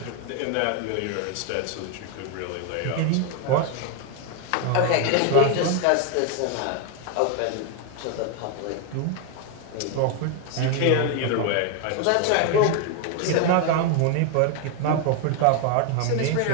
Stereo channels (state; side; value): different; both; correlation 0.01